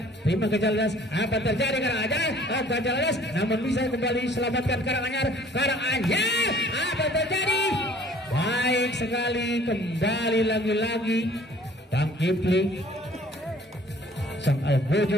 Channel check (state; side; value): normal; both; correlation 0.54